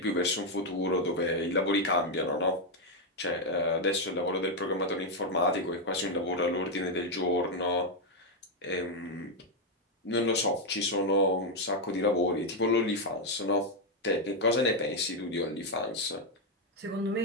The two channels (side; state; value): both; normal; correlation 0.02